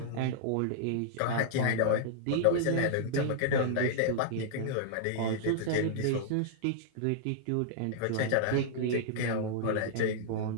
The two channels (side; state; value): both; different; correlation -0.01